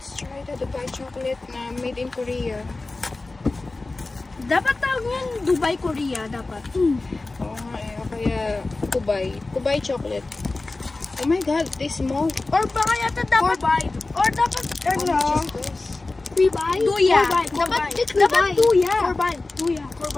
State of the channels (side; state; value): right; quieter; 3.3 dB